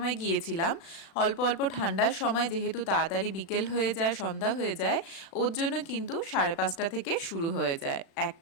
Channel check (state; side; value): late; right; 36 ms